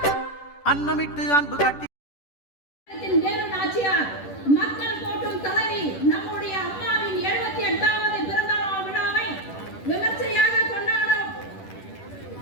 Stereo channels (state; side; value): late; right; 10 ms